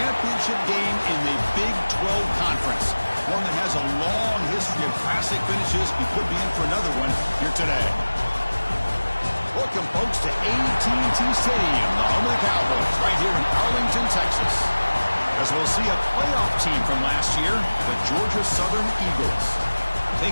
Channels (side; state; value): both; inverted; correlation -1.00